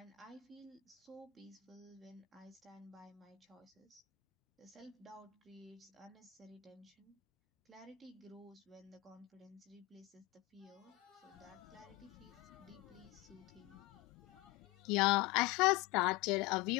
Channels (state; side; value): quieter; right; 18.8 dB